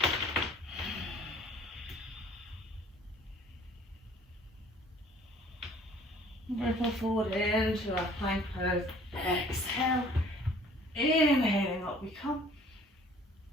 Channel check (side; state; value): both; normal; correlation 0.54